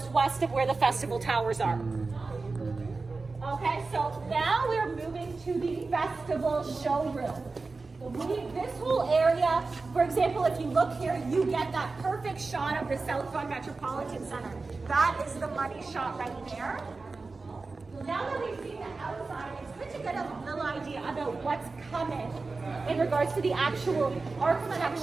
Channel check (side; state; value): left; quieter; 3.9 dB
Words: west of where the Festival Towers are. Okay, so now we're moving to the Festival showroom. This whole area, for example, if you look here, you get that perfect shot of the South Vaughan Metropolitan Center. That is the money shot right there. Now that we've seen the outside, it's good to get a little idea about what's coming in regards to the actual architecture. Let